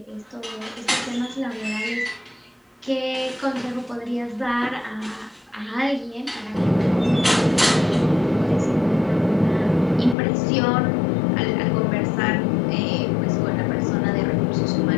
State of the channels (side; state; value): right; drops out; at 10.2 s